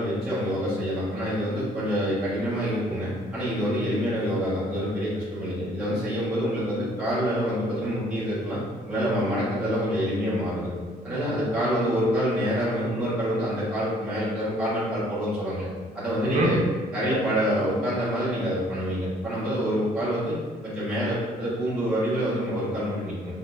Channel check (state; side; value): normal; both; correlation 0.60